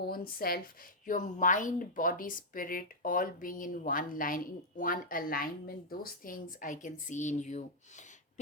self, your mind, body, spirit, all being in one line, in one alignment. Those things I can see in you.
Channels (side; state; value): both; normal; correlation -0.06